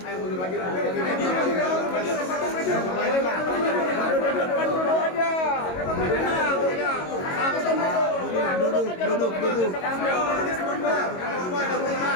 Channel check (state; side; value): late; right; 22 ms